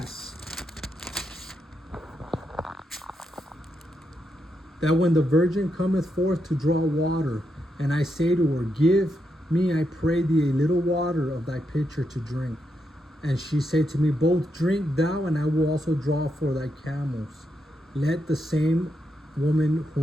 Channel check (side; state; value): both; normal; correlation 0.82